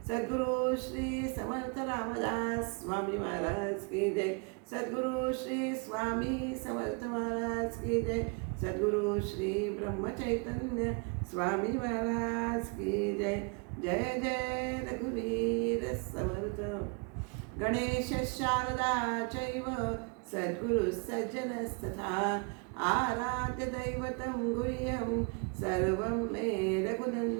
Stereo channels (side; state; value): left; quieter; 34.4 dB